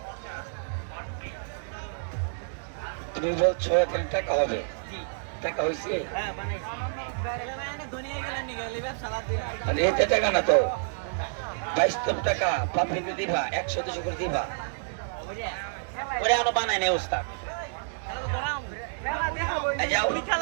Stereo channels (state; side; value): silent; left; digital silence